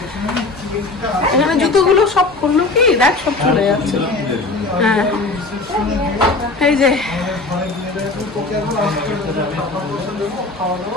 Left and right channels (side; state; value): right; quieter; 3.3 dB